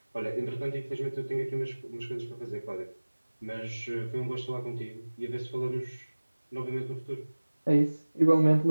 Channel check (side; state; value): both; inverted; correlation -1.00